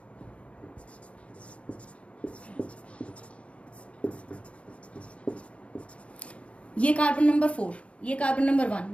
ये कार्बन नंबर 4, ये कार्बन नंबर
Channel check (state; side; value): late; right; 0.062 ms